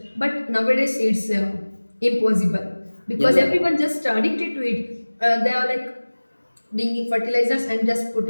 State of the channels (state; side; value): inverted; both; correlation -1.00